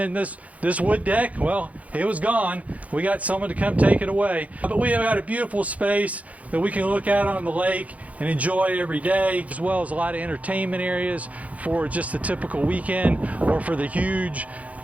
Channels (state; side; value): late; left; 0.069 ms